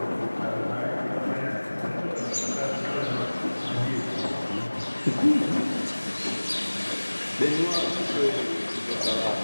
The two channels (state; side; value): inverted; both; correlation -1.00